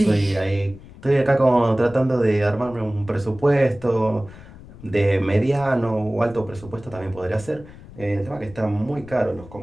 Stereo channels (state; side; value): noise; left; rumble, 19 dB below the sound